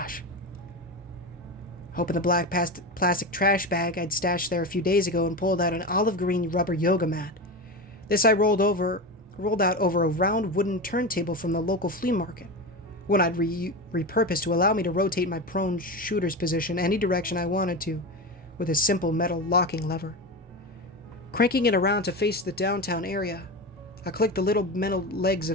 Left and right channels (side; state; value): both; normal; correlation 0.21